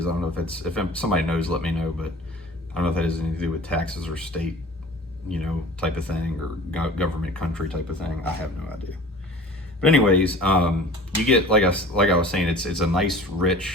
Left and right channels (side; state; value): both; normal; correlation 0.43